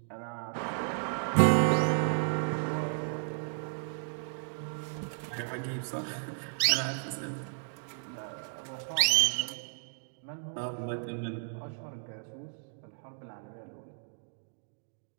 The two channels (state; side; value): silent; left; digital silence